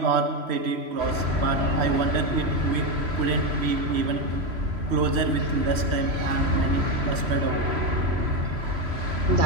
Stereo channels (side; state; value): left; late; 3.1 ms